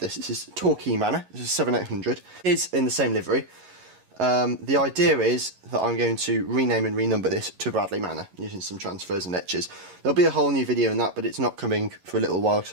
This is Torquay Manor. This is 7800. It's in the same livery. The idea is that I'm going to rename and renumber this to Bradley Manor using some transfers and etches. There'll be a whole new video in that, but it's not coming for a little while because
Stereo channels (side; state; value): left; late; 11 ms